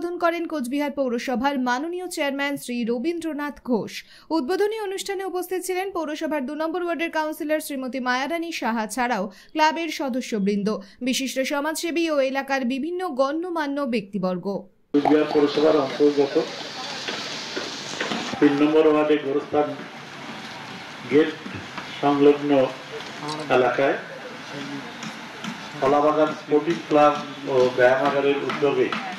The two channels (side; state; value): both; identical; correlation 1.00